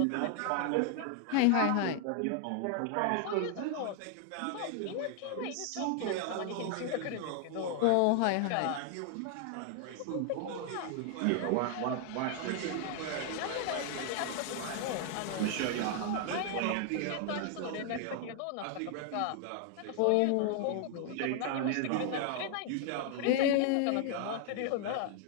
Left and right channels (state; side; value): different; both; correlation 0.00